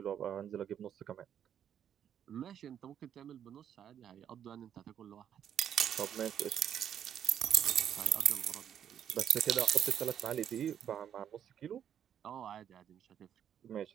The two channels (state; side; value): quieter; left; 9.3 dB